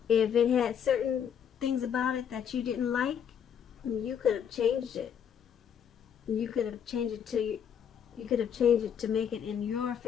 If it had certain things about it that you didn't like, you could have changed it. You could have changed it to make it in your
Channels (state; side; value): quieter; right; 8.3 dB